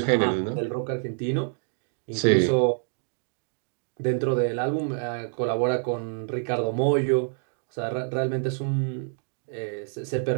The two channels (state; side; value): silent; left; 60 dB below the other